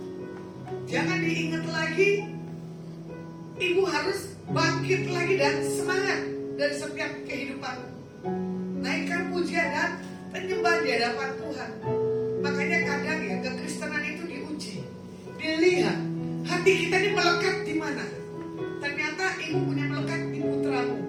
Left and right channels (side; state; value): both; identical; correlation 1.00